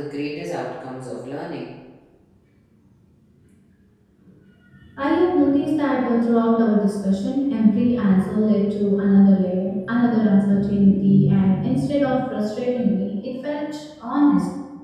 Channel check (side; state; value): both; identical; correlation 1.00